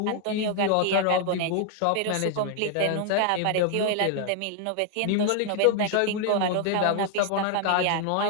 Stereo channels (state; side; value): different; both; correlation 0.00